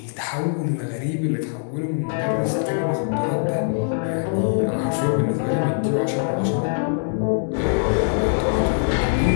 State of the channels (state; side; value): silent; right; digital silence